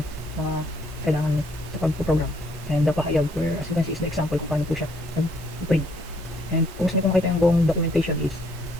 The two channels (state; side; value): normal; both; correlation 0.67